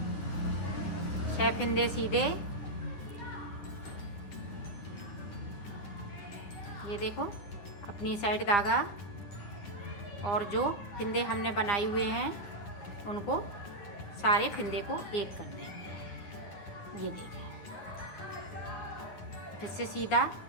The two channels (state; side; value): late; right; 10 ms